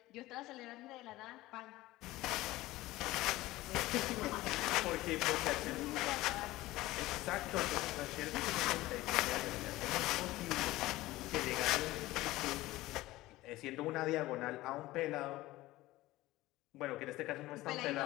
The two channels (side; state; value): right; quieter; 17.7 dB